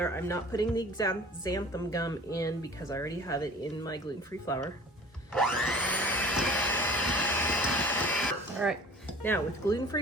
I'm not putting the xanthan gum in because I already have it in my gluten-free flour. All right, now with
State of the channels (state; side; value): normal; both; correlation 0.45